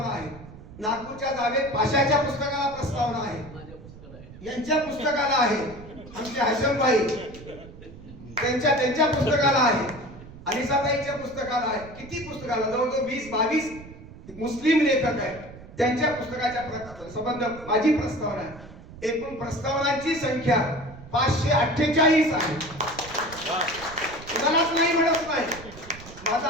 आहे. नागपूरच्या जावेद पाशाच्या पुस्तकाला प्रस्तावना आहे. यांच्या पुस्तकाला आहे. आमचे हशम भाई त्यांच्या पुस्तकाला आहे. अनिसाताईच्या पुस्तकाला आहे. किती पुस्तकाला, जवळजवळ 20-22 मुस्लिम लेखक आहेत. त्यांच्या पुस्तकाच्या संबंध माझी प्रस्तावना आहे. एकूण प्रस्तावनांची संख्या 548 आहे. कुणालाच नाही म्हणत नाही.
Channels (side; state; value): right; noise; rumble, 17 dB below the sound